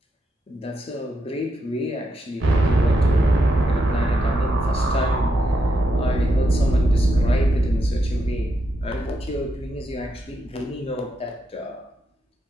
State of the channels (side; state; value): both; normal; correlation 0.82